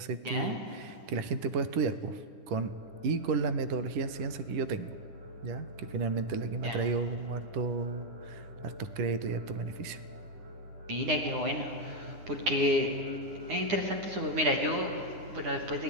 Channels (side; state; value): left; late; 9.8 ms